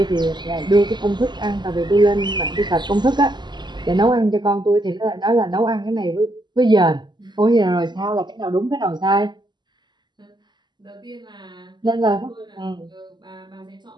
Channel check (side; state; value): left; late; 0.21 ms